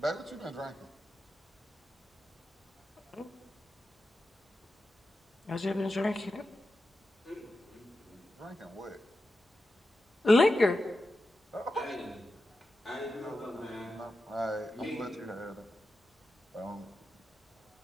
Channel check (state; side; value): normal; both; correlation 0.91